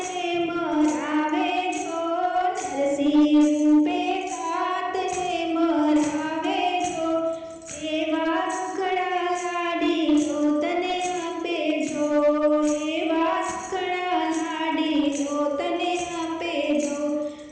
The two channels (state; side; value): identical; both; correlation 1.00